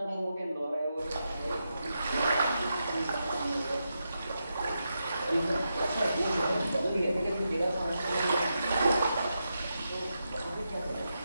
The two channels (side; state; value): both; inverted; correlation -0.86